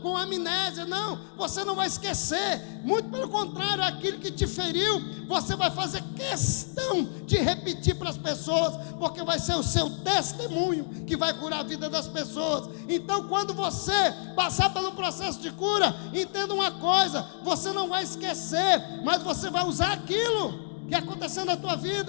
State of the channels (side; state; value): right; silent; digital silence